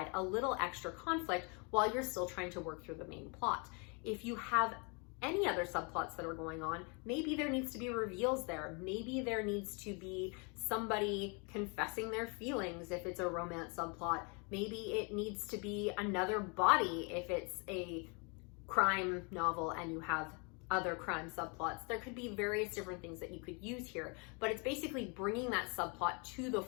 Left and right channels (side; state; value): right; quieter; 33.3 dB